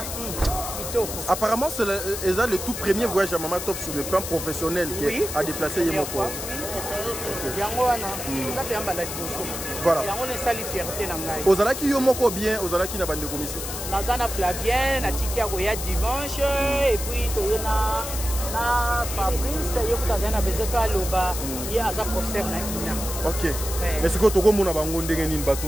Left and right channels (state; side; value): noise; left; hiss, 6 dB below the sound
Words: apparemment c'est le tout premier voyage à Maman Top sur le plan professionnel qui a déplacé Yemoko. Voilà. Ozalaki yo moko bien, ozalaki na bande commission. Nazana Flavien, na tikia koya dimanche et puis toyena na Fabrice yo kutazana besoin pa loba ya aza professeur na ina. OK. Mais ce que toko mona bango ndenge nini